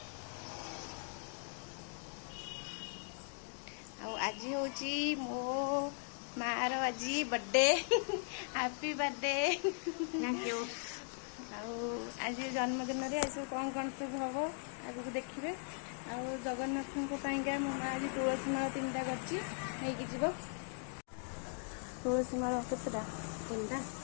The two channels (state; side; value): silent; right; 52 dB below the other